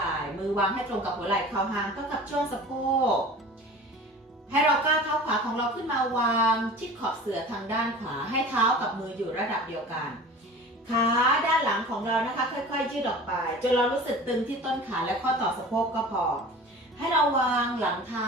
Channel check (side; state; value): both; normal; correlation 0.39